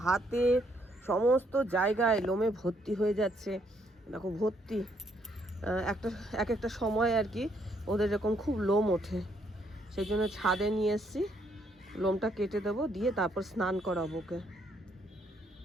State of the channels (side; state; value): both; normal; correlation 0.71